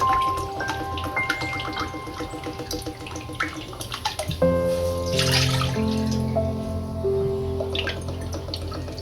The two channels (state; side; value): identical; both; correlation 1.00